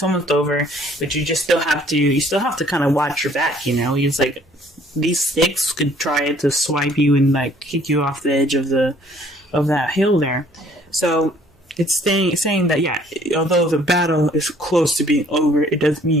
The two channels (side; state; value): both; normal; correlation 0.59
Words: almost over, but you still have to kind of watch your back. It's like these sticks could try to swipe you and kick you off the edge of that hill there. So It's saying that, yeah, although the battle is close to being over, it doesn't